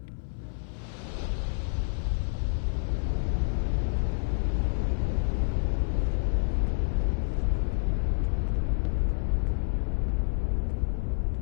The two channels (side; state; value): right; silent; 58 dB below the other